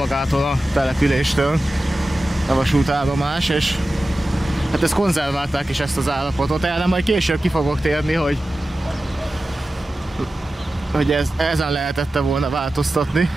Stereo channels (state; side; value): normal; both; correlation 0.94